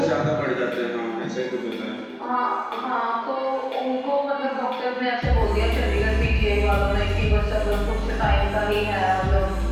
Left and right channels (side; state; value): both; identical; correlation 1.00